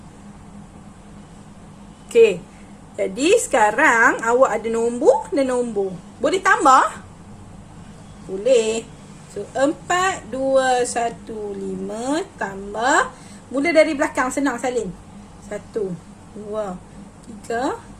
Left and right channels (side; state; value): both; identical; correlation 1.00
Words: Okey. Jadi sekarang awak ada nombor dan nombor. Boleh tambah? Boleh. So 4, 2, 1, 5 tambah. Mula dari belakang, senang salin. 1, 2, 3.